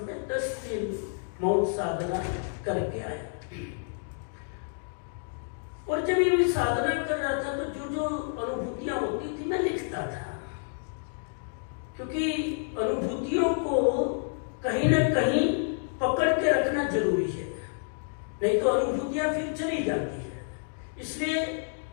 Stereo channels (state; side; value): silent; right; digital silence